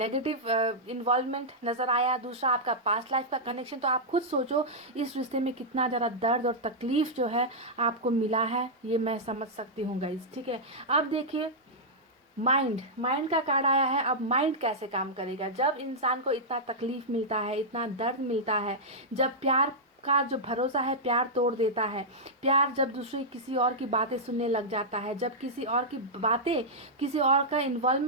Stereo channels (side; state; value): both; normal; correlation -0.09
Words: इन्वॉल्वमेंट नज़र आया, दूसरा आपका पास्ट लाइफ का कनेक्शन, तो आप खुद सोचो इस रिश्ते में कितना ज़्यादा दर्द और तकलीफ जो है आपको मिला है, ये मैं समझ सकती हूँ गाइस। ठीक है, अब देखिए माइंड का कार्ड आया है। अब माइंड कैसे काम करेगा जब इंसान को इतना तकलीफ मिलता है, इतना दर्द मिलता है, जब प्यार का जो भरोसा है प्यार तोड़ देता है, प्यार जब दूसरी किसी और की बातें सुनने लग जाता है, जब किसी और की बातें, किसी और का